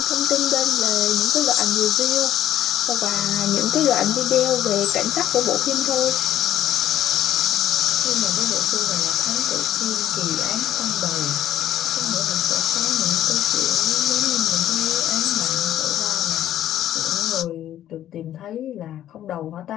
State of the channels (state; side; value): quieter; right; 11.8 dB